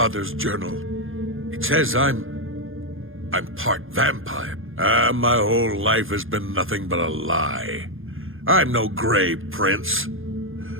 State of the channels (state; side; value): late; left; 0.59 ms